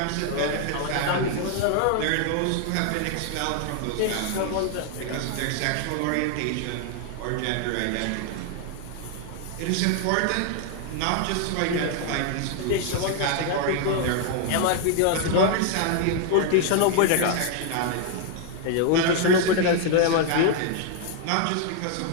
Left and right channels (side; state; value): both; different; correlation 0.00